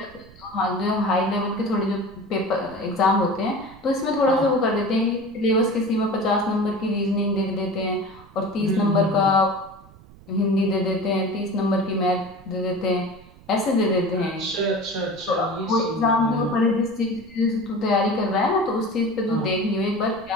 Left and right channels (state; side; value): noise; right; rumble, 23 dB below the sound